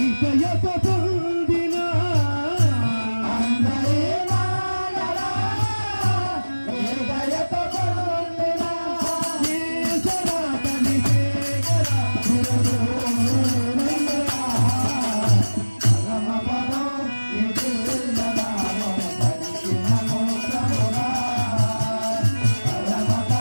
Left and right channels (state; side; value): inverted; both; correlation -1.00